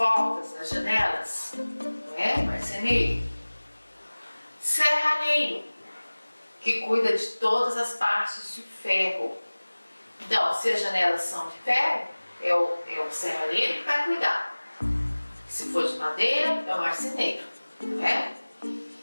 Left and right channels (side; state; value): both; inverted; correlation -1.00